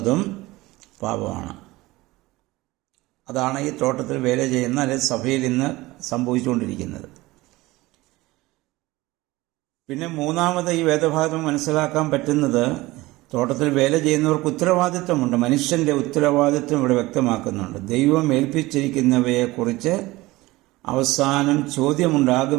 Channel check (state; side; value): quieter; left; 19.7 dB